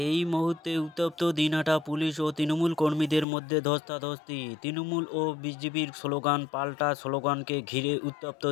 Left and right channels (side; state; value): right; drops out; at 3.2 s